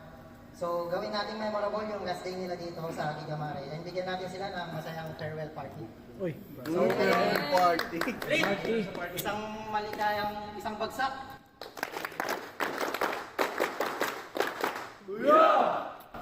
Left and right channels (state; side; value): identical; both; correlation 1.00